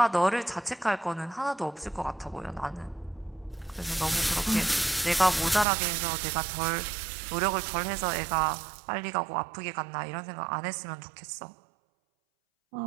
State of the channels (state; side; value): drops out; left; at 5.7 s